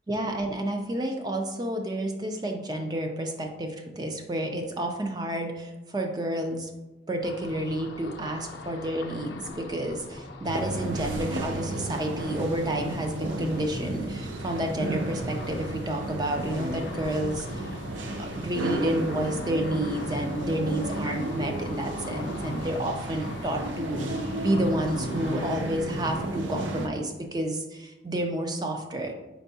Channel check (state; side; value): normal; both; correlation 0.55